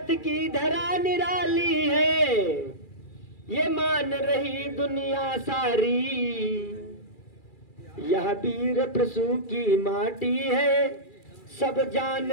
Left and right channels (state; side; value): late; right; 2.4 ms